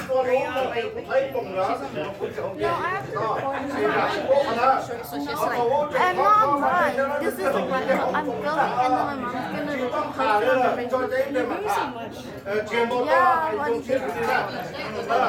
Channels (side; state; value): both; identical; correlation 1.00